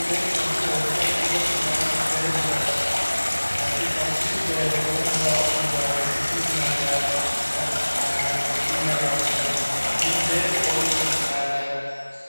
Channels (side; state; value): both; inverted; correlation -1.00